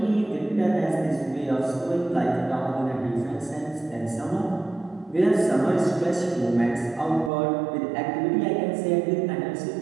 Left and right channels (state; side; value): drops out; left; at 7.3 s